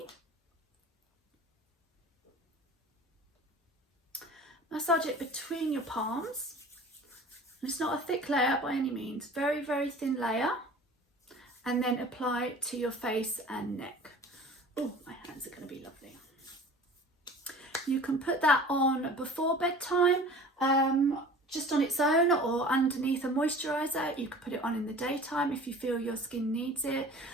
Massage it between your palms. And it's not a thick layer by any means, very thin layer. And then apply it to your face and neck. Oh, my hands are going to be lovely. You can put that on before bedtime, just on its own, or underneath a moisturiser. You can put it on in the daytime if you feel your skin needs it,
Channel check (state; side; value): normal; both; correlation 0.43